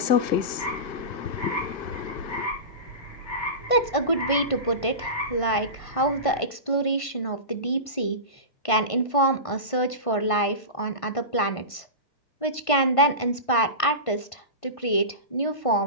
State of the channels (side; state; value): right; late; 1.5 ms